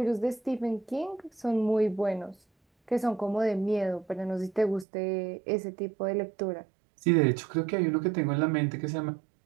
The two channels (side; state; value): left; drops out; at 4.9 s